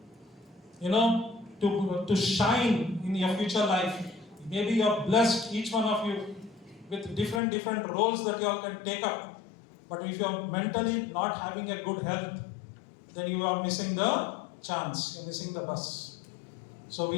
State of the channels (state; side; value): drops out; right; at 7.4 s